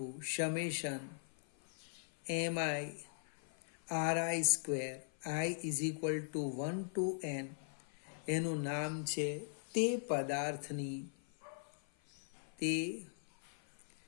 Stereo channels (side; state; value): right; silent; 51 dB below the other